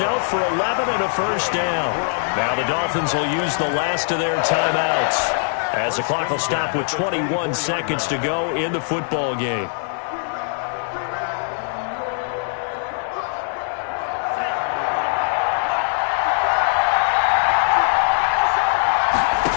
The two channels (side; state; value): right; silent; digital silence